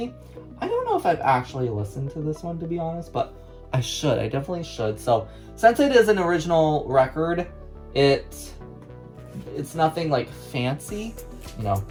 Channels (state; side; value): identical; both; correlation 1.00